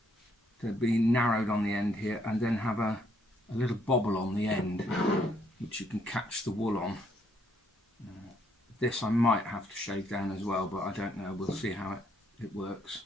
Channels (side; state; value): both; normal; correlation 0.70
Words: to be narrowed on the end here, and then have a little bobble on the end which you can catch the wool on. This I might have to shave down as well, but I don't know, we'll see how it works.